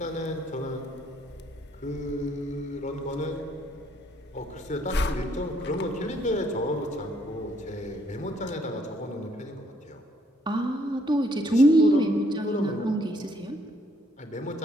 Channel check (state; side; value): normal; both; correlation 0.67